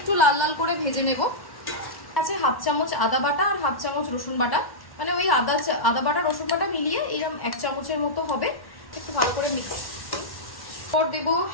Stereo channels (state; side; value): late; right; 1.1 ms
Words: লাল লাল করে ভেজে নেব। আছে হাফ চামচ আদা বাটা আর হাফ চামচ রসুন বাটা, মানে ওই আদা বাটা রসুন বাটা মিলিয়ে এরকম 1 চামচের মতো হবে। একটু ভালো করে মিক্স করে দেবো